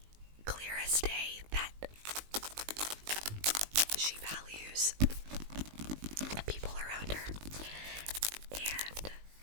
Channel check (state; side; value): late; left; 19 ms